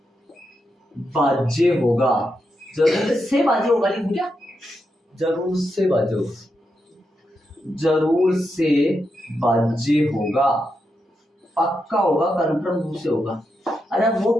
भाज्य होगा। जरूर से भाज्य होगा, लिखूं क्या? जरूर से भाज्य होगा, जरूर से भाज्य होगा, पक्का होगा, कन्फर्म रूप से होगा। अरे वो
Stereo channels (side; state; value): both; normal; correlation 0.85